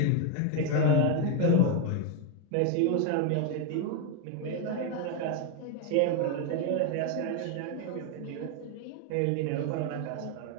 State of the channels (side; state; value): both; different; correlation 0.01